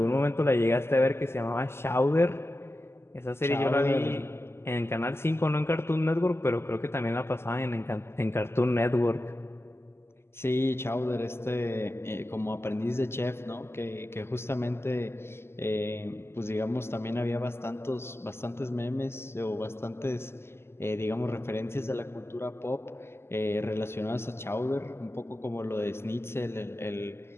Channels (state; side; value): late; right; 0.12 ms